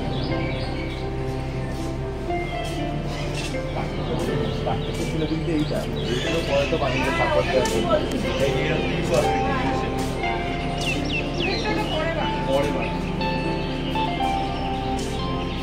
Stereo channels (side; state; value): both; identical; correlation 1.00